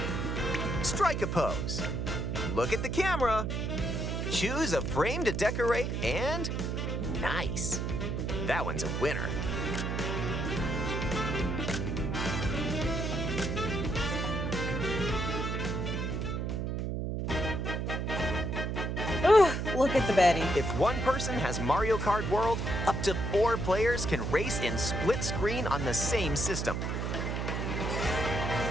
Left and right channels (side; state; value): right; noise; hum, 1 dB below the sound